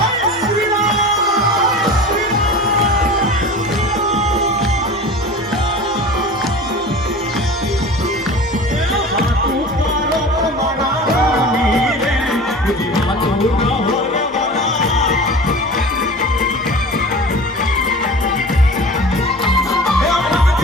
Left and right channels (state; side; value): normal; both; correlation 0.36